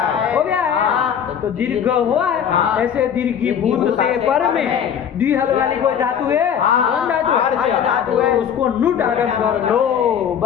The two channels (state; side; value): quieter; right; 8.4 dB